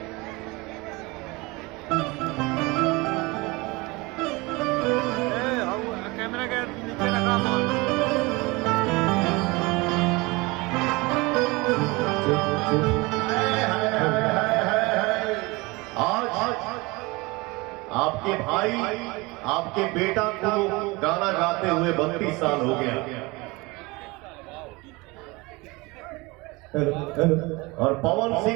कैमरा के नीचे रखा आज आपके भाई आपके बेटा को गाना गाते हुए 32 साल हो गया और पवन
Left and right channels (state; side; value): quieter; left; 24.1 dB